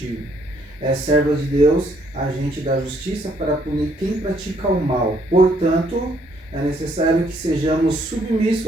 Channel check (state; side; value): normal; both; correlation 0.68